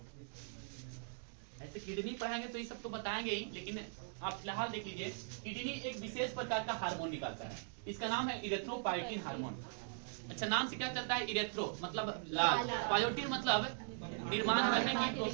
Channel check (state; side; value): silent; left; digital silence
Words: ऐसे किडनी पढ़ाएंगे तो ये सब तो बताएंगे ही, लेकिन आप फिलहाल देख लीजिए। किडनी एक विशेष प्रकार का हार्मोन निकालता है, इसका नाम है इरेथ्रोपायोटिन हार्मोन। अच्छा, नाम से क्या चलता है, इरेथ्रो मतलब लाल, पायोटिन मतलब निर्माण करने की